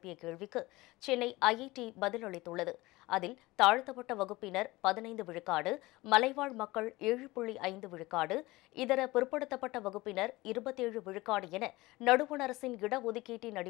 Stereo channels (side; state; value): right; quieter; 20.4 dB